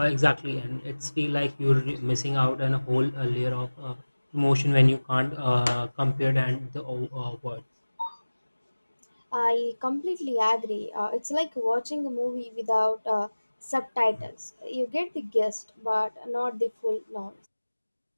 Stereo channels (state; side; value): inverted; both; correlation -1.00